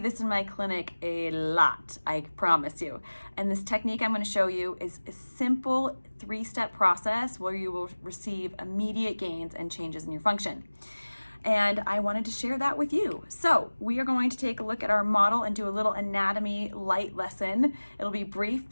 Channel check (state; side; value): inverted; both; correlation -1.00